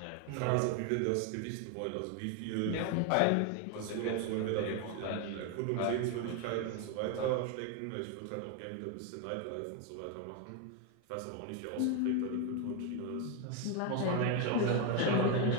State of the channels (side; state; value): both; different; correlation 0.01